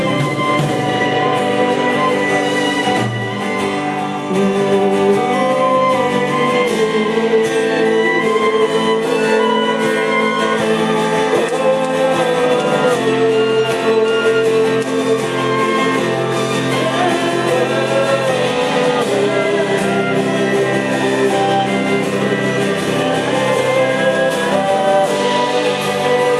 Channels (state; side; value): identical; both; correlation 1.00